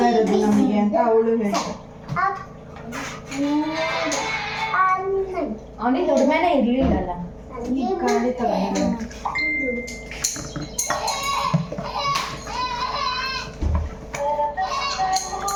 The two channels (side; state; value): both; identical; correlation 1.00